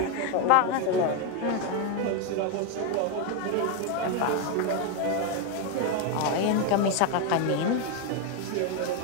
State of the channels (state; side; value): different; both; correlation 0.01